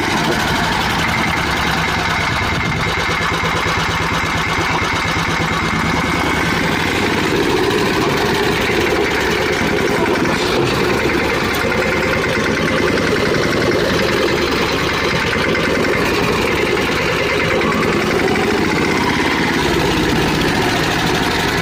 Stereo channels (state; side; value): identical; both; correlation 1.00